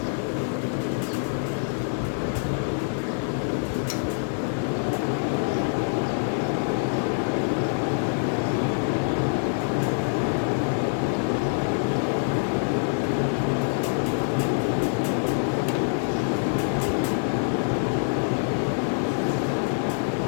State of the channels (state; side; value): silent; right; digital silence